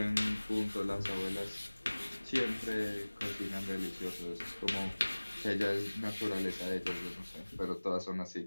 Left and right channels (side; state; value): both; inverted; correlation -1.00